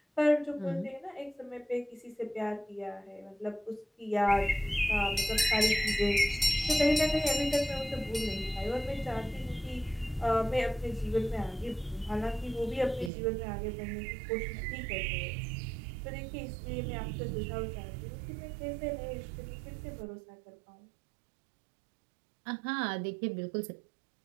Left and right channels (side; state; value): left; drops out; at 13.1 s